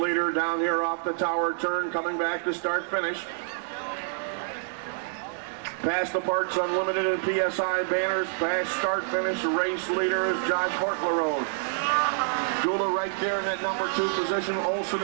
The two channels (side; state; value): left; silent; 60 dB below the other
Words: down here off the tower turn, coming back to start finish. Past the Parks Unlimited and PSI banners, past start finish, race leader is Josh Hortlerode. Gullah right there in that number 2 position. Olson